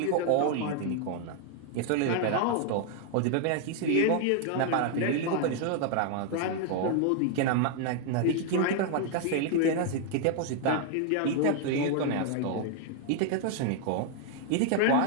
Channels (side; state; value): both; different; correlation 0.00